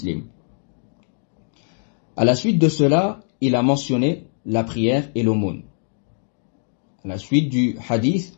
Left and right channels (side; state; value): right; silent; digital silence